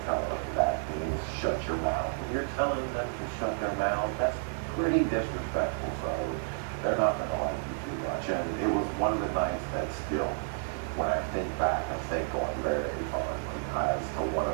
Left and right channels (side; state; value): left; silent; 57 dB below the other